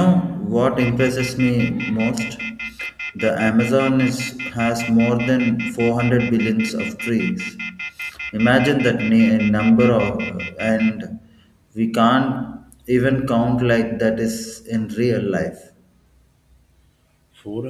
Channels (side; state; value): both; identical; correlation 1.00